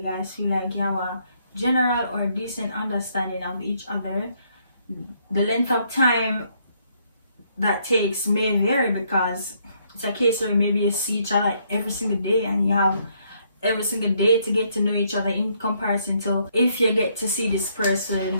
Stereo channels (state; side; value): inverted; both; correlation -0.71